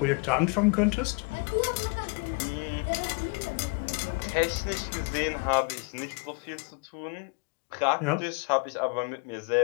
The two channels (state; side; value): quieter; right; 31.9 dB